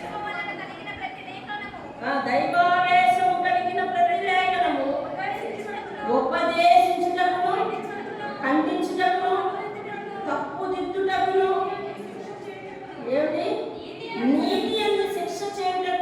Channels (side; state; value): both; identical; correlation 1.00